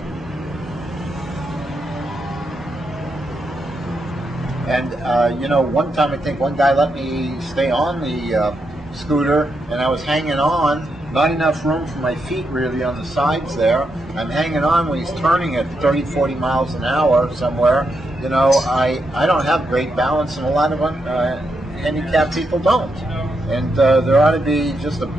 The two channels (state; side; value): normal; both; correlation 0.83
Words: And you know, one time I think one guy let me stay on the scooter, and I was hanging on. Not enough room for my feet really on the sides there. I'm hanging on when he's turning at 30, 40 miles an hour somewhere. You know, I don't have great balance, and a lot of handicapped people don't. And there ought to be just a